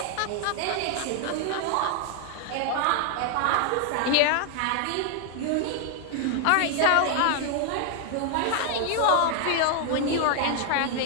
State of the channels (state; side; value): different; both; correlation 0.00